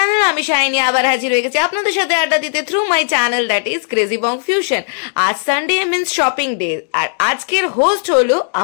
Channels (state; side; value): silent; right; digital silence